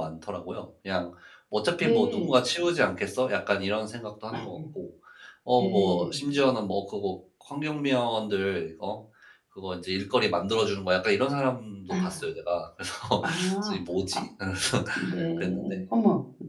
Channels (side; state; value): both; identical; correlation 1.00